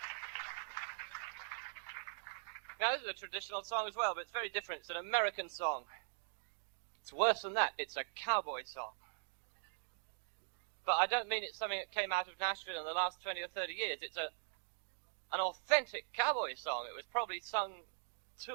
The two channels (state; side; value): silent; left; digital silence